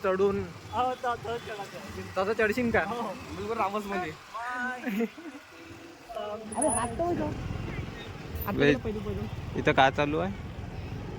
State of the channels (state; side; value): identical; both; correlation 1.00